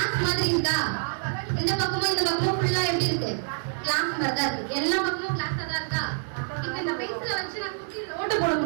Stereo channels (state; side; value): silent; left; 60 dB below the other